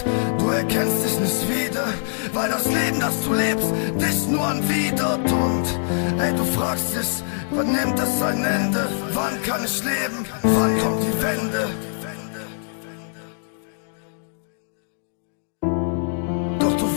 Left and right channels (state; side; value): silent; right; digital silence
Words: du erkennst dich nicht wieder, weil das Leben, das du lebst, dich nur anwidert. Und ey, du fragst dich, wann nimmt es ein Ende? Wann kann ich leben? Wann kommt die Wende? Doch